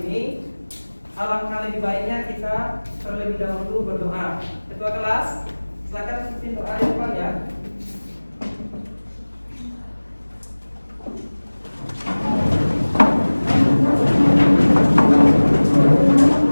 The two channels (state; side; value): inverted; both; correlation -1.00